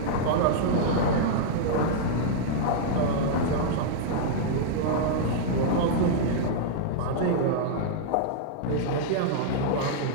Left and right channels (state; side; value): different; both; correlation -0.02